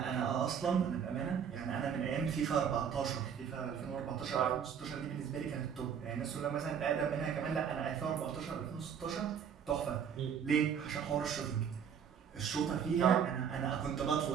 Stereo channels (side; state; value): left; quieter; 7.7 dB